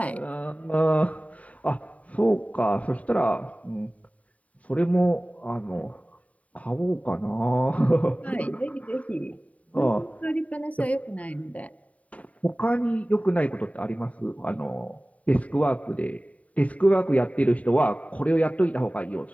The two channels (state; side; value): late; right; 0.068 ms